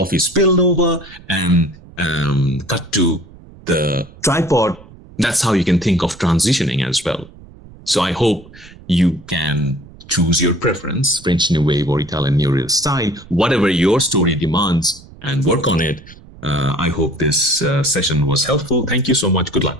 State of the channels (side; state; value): right; noise; rumble, 21 dB below the sound